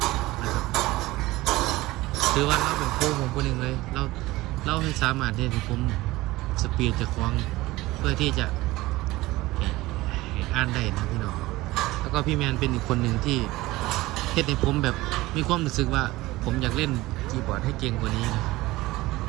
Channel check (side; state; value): left; quieter; 19.0 dB